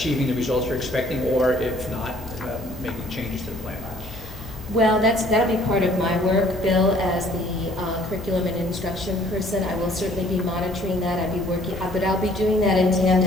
the results you're expecting, or if not, making changes to the plan? Well, that'll be part of my work, Bill, as the curriculum and instruction person. I will certainly be monitoring that. I'll be working, but I'll be doing that in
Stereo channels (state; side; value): normal; both; correlation 0.58